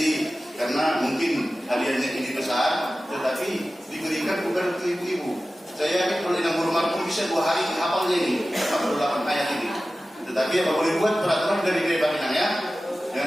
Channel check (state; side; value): normal; both; correlation 0.95